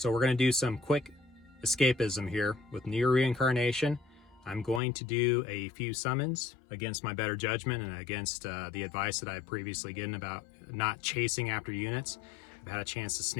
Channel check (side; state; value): right; drops out; at 4.8 s